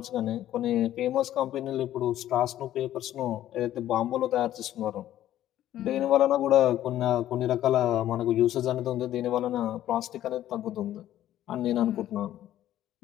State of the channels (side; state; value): right; quieter; 12.7 dB